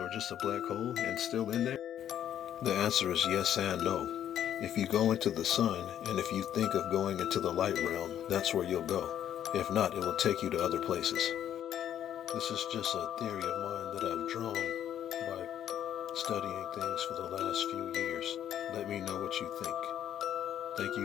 just a black hole and still in there? The answer is yes and no. If you go into the sun and if you think of going into the light realm, that's where you'll go. If not, it will take you to other places. This is just a theory of mine that I've drawn by studying things for the last few years. Let me know what you think. Thank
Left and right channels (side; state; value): right; quieter; 10.5 dB